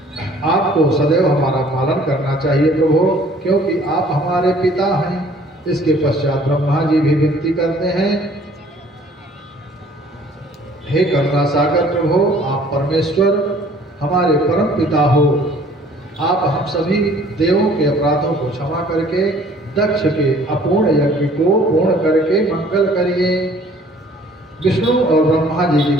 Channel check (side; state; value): both; normal; correlation 0.55